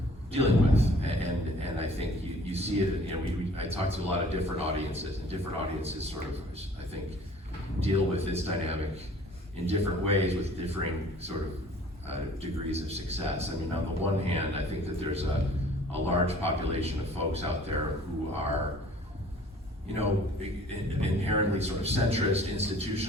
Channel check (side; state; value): both; normal; correlation 0.51